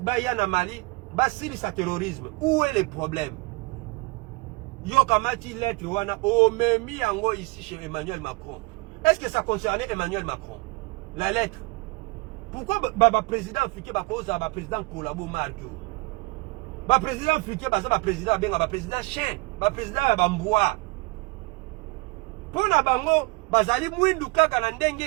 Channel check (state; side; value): quieter; left; 25.8 dB